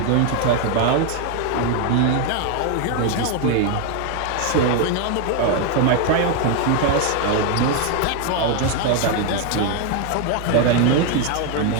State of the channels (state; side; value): different; both; correlation 0.01